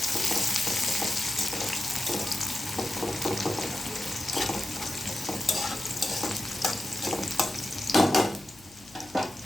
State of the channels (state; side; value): noise; left; hum, 25 dB below the sound